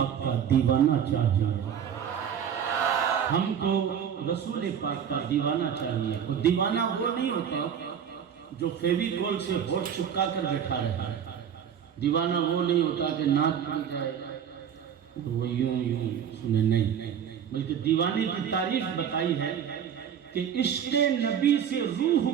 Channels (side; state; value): left; quieter; 8.4 dB